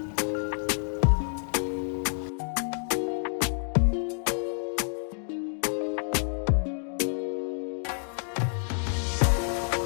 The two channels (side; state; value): right; silent; digital silence